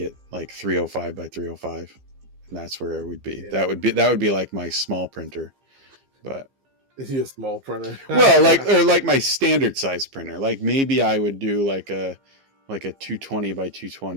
like 305 by 305, and that's where it would be. Yeah. That would be like my small printer. But is he a small printer? Well, like my standard size printer. Like maybe I would do like a 220 by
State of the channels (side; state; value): left; late; 15 ms